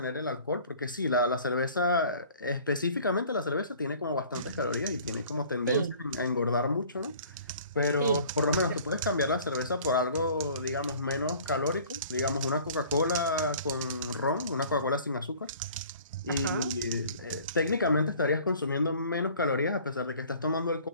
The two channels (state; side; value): inverted; both; correlation -0.50